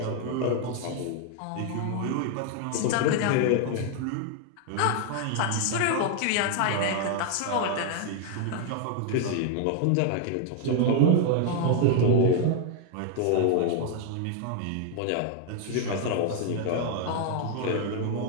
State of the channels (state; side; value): different; both; correlation 0.00